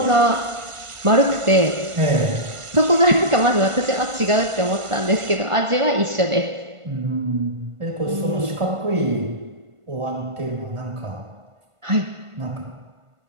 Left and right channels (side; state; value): left; late; 1.5 ms